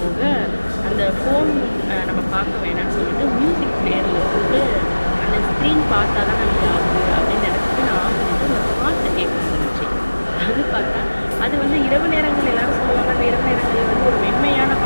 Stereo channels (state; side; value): inverted; both; correlation -1.00